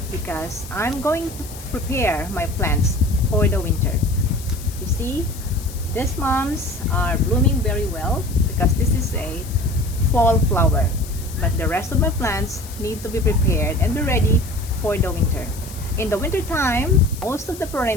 because I'm going to prepare my plants for the winter. You see, these mums are blooming very well because this is a fall flower. But the rest of my plants need to be prepared and be ready for the winter. In the winter time, most of the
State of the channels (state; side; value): noise; left; hiss, 16 dB below the sound